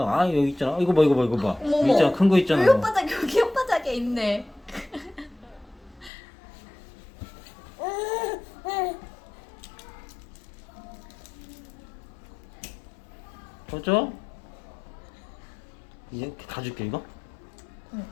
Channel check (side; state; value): right; drops out; at 6.1 s